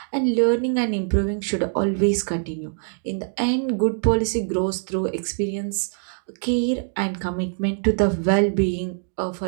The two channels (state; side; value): silent; left; digital silence